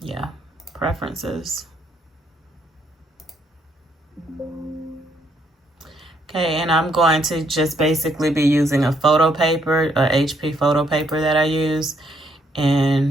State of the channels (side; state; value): both; normal; correlation 0.72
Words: preferences. Okay, and I'm going to just basically be using a photo paper, a HP photo paper that I use.